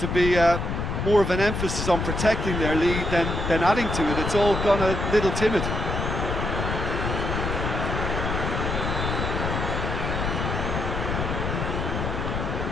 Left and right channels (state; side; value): noise; left; rumble, 2 dB below the sound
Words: be more of an emphasis on protecting their lead than adding to it. It's all gone a little timid.